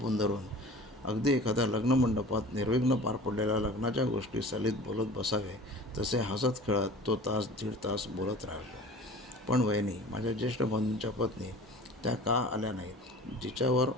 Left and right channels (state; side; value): normal; both; correlation 0.41